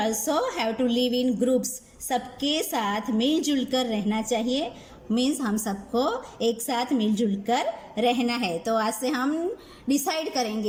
have to live in groups. सबके साथ मिलजुल कर रहना चाहिए, means हम सबको एक साथ मिलजुल कर रहना है। तो आज से हम डिसाइड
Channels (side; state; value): both; identical; correlation 1.00